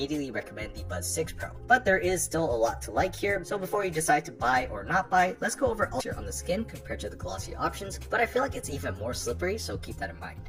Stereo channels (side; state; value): both; identical; correlation 1.00